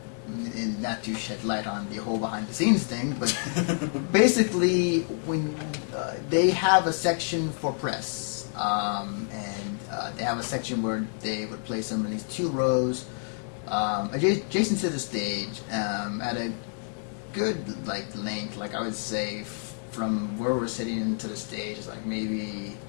not to shed light on the whole behind the scenes thing, but basically when they have a section for press, and they have a section where they would place some of these 2 rows adjacent to the stage at a good length. I would say from where we're sitting into the stage is maybe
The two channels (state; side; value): silent; right; 58 dB below the other